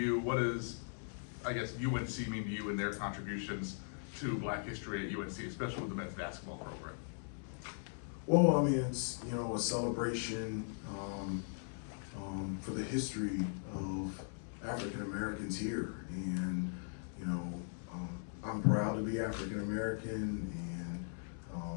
What does, I guess, UNC mean to you and their contributions to Black history at UNC, especially with the men's basketball program? Well, I mean, it's, a celebration for the history of African Americans here. And, I'm proud to be African American, and,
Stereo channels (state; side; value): silent; right; digital silence